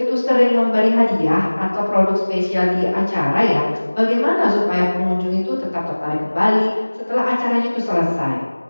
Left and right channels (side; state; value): both; inverted; correlation -1.00